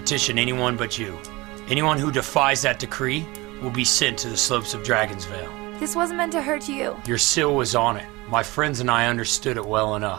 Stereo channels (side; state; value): left; quieter; 22.4 dB